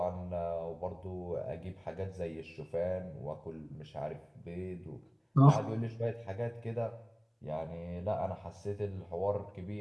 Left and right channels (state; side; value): identical; both; correlation 1.00